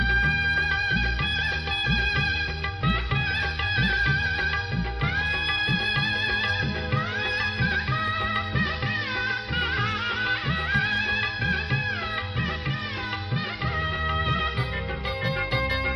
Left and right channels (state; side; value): identical; both; correlation 1.00